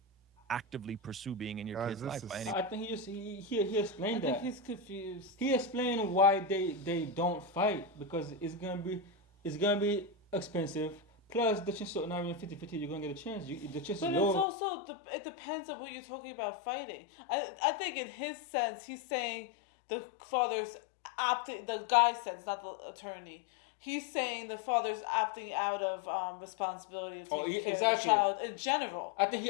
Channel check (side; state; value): right; drops out; at 14.5 s